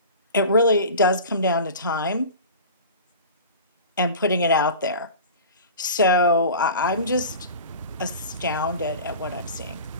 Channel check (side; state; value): both; inverted; correlation -0.36